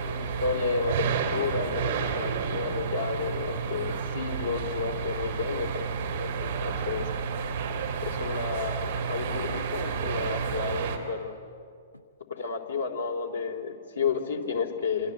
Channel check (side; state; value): both; inverted; correlation -0.52